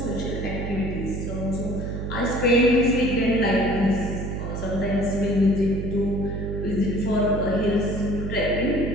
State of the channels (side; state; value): right; noise; hum, 4 dB below the sound